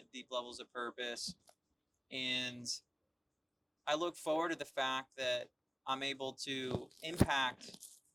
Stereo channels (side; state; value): both; identical; correlation 1.00